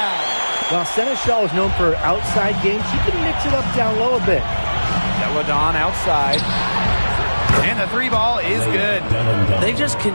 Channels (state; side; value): inverted; both; correlation -1.00